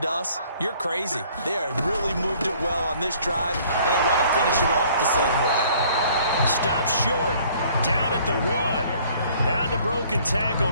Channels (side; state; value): both; inverted; correlation -0.57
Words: us, you're crazy. They have really moved it well on this drive, and they want to finish it off the same way. Stop short, down at the 1. Had the broken tackle,